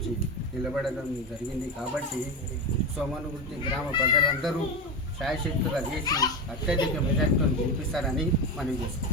నిలబడడం జరిగింది కాబట్టి సోమన్కుర్తి గ్రామ ప్రజలందరూ శాయశక్తుగా చేసి అత్యధిక మెజార్టీతో గెలిపిస్తారని మనం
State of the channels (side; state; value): both; normal; correlation 0.18